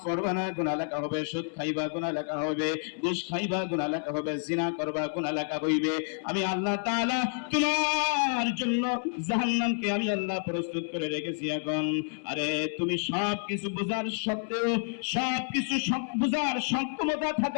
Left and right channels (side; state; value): right; silent; 58 dB below the other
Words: পড়বা না, গুনাহ লেখা হবে। সুদ খাইবা, গুনাহ লেখা হবে। ঘুষ খাইবা, গুনাহ লেখা হবে। জিনা করবা, গুনাহ লেখা হইবে। আমি আল্লাহ তাআলা তোমার জন্য জাহান্নামকে আমি আল্লাহ প্রস্তুত করে রেখেছি এখন। আরে তুমি সব কিছু বোঝার সত্ত্বেও, সব কিছু বোঝার সক্ষমতা